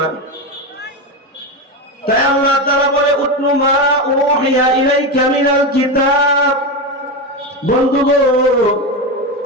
না। তাই আল্লাহ তাআলা বলে উতলু মা উহিয়া ইলাইকা মিনাল কিতাব। বন্ধু গো,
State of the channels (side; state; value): both; normal; correlation 0.15